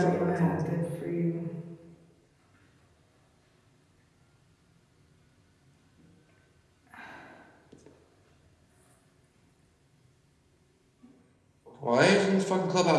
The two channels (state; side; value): identical; both; correlation 1.00